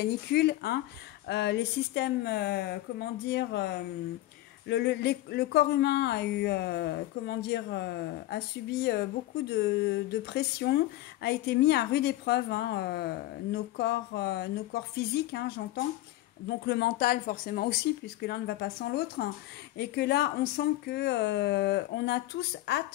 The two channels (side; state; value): right; quieter; 16.0 dB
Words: les systèmes, comment dire, le corps humain a eu, a subi beaucoup de pression, a été mis à rude épreuve, nos corps physiques, j'entends. Donc le mental forcément aussi, puisque l'un ne va pas sans l'autre, et que là on sent que on a tous